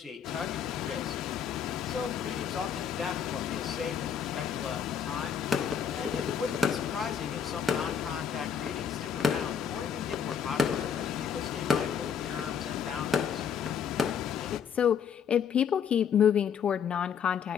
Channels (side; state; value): right; quieter; 7.5 dB